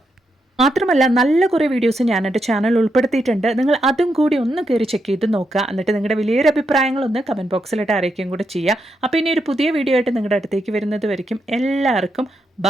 മാത്രമല്ല നല്ല കുറേ വീഡിയോസ് ഞാൻ എൻ്റെ ചാനൽ ഉൾപ്പെടുത്തിയിട്ടുണ്ട്. നിങ്ങൾ അതും കൂടി ഒന്ന് കയറി ചെക്ക് ചെയ്ത് നോക്കുക. എന്നിട്ട് നിങ്ങളുടെ വലിയൊരു അഭിപ്രായങ്ങളൊന്ന് കമൻറ്റ് ബോക്സിലിട്ട് അറിയിക്കുകയും കൂടെ ചെയ്യുക. അപ്പോൾ ഇനി ഒരു പുതിയ വീഡിയോ ആയിട്ട് നിങ്ങളുടെ അടുത്തേക്ക് വരുന്നത് വരയ്ക്കും എല്ലാവർക്കും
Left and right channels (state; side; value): normal; both; correlation 0.82